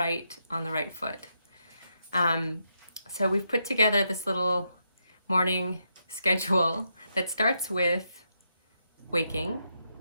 on the right foot. So we've put together this little morning schedule that starts with waking.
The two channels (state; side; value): inverted; both; correlation -0.82